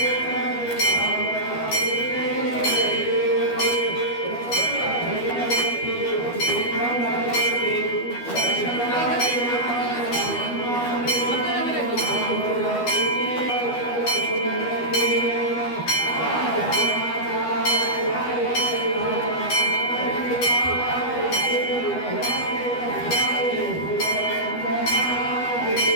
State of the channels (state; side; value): late; right; 12 ms